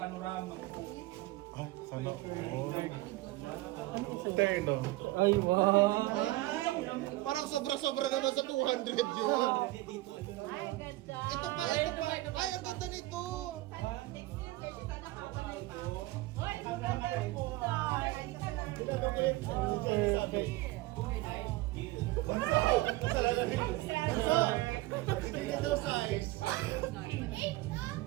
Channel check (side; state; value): left; quieter; 19.0 dB